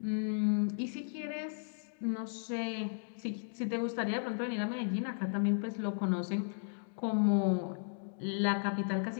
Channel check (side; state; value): right; silent; digital silence